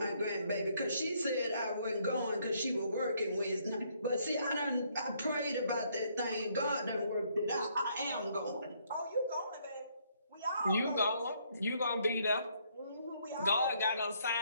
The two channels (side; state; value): both; inverted; correlation -0.69